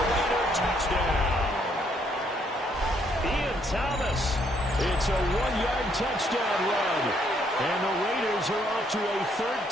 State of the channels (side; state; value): both; normal; correlation 0.70